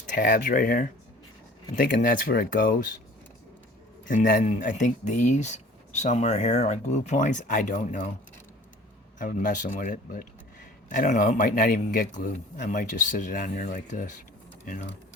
tabs right here. I'm thinking that's where it goes. And then I think these somewhere here are glue points. I don't know. I was messing with it, but I don't know. It might not even get glued. I might just sit it on there like this, you know.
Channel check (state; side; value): normal; both; correlation 0.47